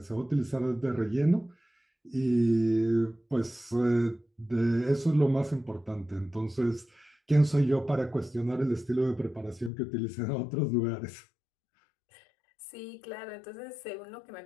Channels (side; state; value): right; drops out; at 9.7 s